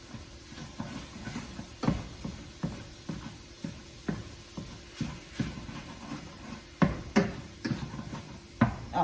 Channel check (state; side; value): identical; both; correlation 1.00